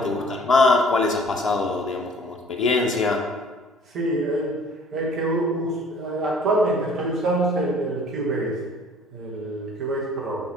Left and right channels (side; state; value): both; normal; correlation 0.53